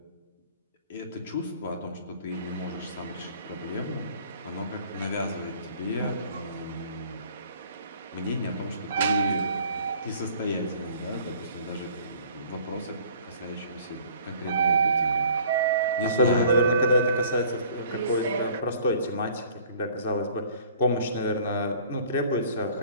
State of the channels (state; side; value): inverted; both; correlation -0.52